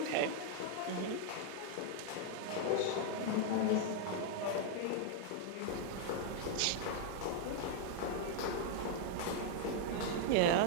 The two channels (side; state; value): both; different; correlation 0.00